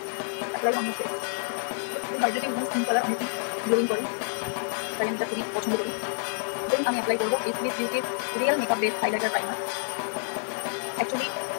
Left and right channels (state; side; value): silent; right; 59 dB below the other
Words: Apply on your face, hydrating এবং স্কিন কালার অনেকই গ্লোয়িং করে, তাই আমি এটা খুবই পছন্দ করি। দেন আমি অ্যাপ্লাই করবো এসবিএস বিউটির real makeup base highlighter primer. Actually